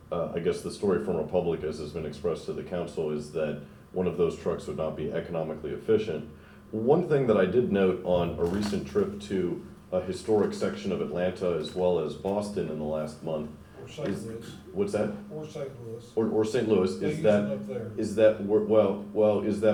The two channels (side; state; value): both; identical; correlation 1.00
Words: I guess the story from Republic, as has been expressed to the council, is that one of those trucks would not be economically efficient. One thing that I did note on a recent trip to a historic section of Atlanta as well as Boston in the last month Or St. is, Louis. what's that? Or St. Louis. Or St. Louis, They is use that, them up there. is that, is